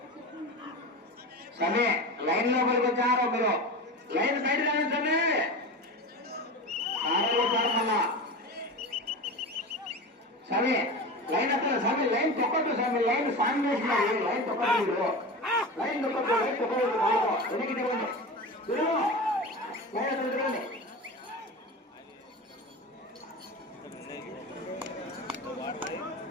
సమయ లైన్ లోపలికి వచ్చారో మీరు, లైన్ బయట రావచ్చండి. సమయ లైన్ అక్కడ సమయ లైన్ తొక్కట్టు, సమయ లైన్ సాంగ్ చేసినారు. లైన్ తొక్కట్టు, లైన్ తొక్కట్టు, లైన్ తొక్కట్టు, వెనక్కి తిరగండి.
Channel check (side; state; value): both; normal; correlation 0.27